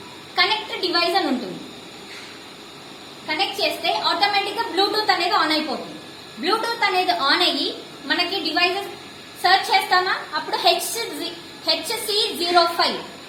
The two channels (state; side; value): identical; both; correlation 1.00